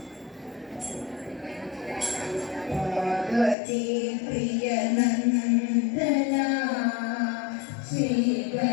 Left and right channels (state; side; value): drops out; right; at 3.6 s